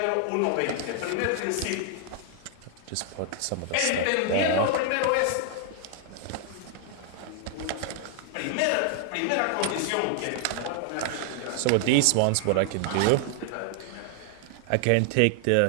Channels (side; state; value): both; different; correlation 0.00